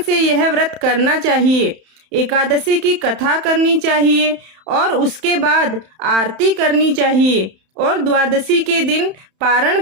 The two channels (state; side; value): late; left; 31 ms